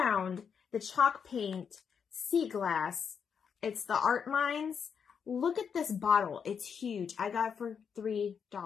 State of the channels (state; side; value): quieter; right; 6.8 dB